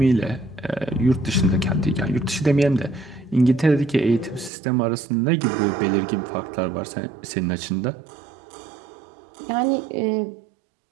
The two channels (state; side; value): drops out; left; at 4.5 s